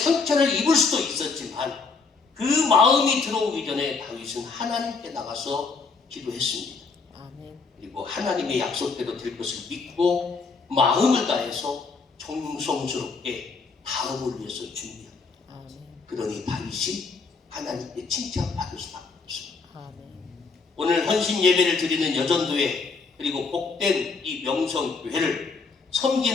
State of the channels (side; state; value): right; quieter; 4.5 dB